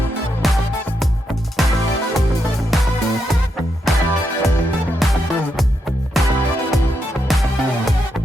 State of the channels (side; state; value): both; normal; correlation 0.82